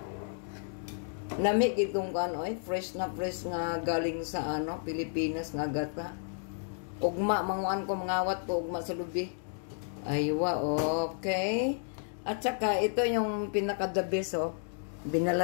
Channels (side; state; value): right; silent; digital silence